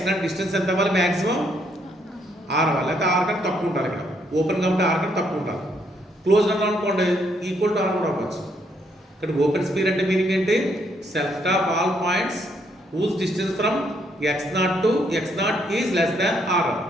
డిస్టెన్స్ ఎంత అవ్వాలి? మ్యాక్సిమం ఆర్ అవ్వాలి. లేకపోతే ఆర్ కంటే తక్కువ ఉండాలి. ఇక్కడ ఓపెన్ కాబట్టి ఆర్ కంటే తక్కువ ఉండాలి. క్లోజ్ అన్నా అనుకోండి ఈక్వల్ టు ఆర్ కూడా అవ్వచ్చు. ఇక్కడ ఓపెన్ స్పీర్ అంటే మీనింగ్ ఏంటి? సెల్ఫ్ of all points whose distance from x naught to x naught is less than r,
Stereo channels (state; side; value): normal; both; correlation 0.72